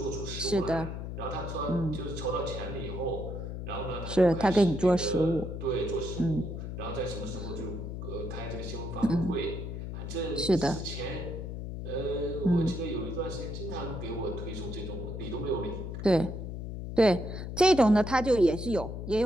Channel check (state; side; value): noise; left; hum, 6 dB below the sound